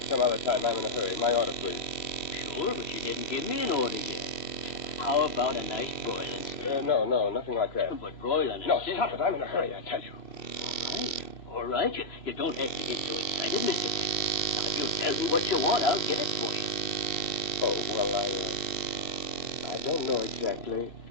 Some other time. I'm in a hurry. My order, please. Sure, but you didn't give me an order yet. How about a nice broiling steak? No, nothing like that. But broiling and No, steak... stop it. I'm in a hurry, I tell you. All right. You don't have to get so excited, Mr. Taylor. Now, if you'll tell me what you want, I'll get it for you. Oh, well, I don't know exactly.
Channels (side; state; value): right; late; 2.7 ms